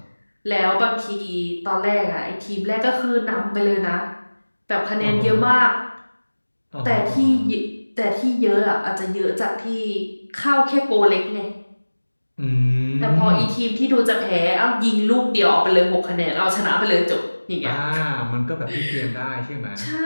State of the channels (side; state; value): both; inverted; correlation -1.00